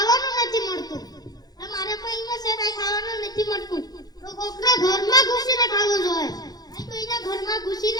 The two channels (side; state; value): right; late; 0.19 ms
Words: નથી મળતું. તમારે પૈમાં છે કાઈ ખાવાનું નથી મળતું. તો કોકના ઘરમાં ઘૂસીને ખાવું જોઈએ. કોઈના ઘરમાં